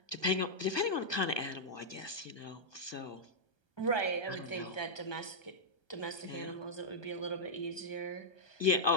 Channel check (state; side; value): late; right; 1.3 ms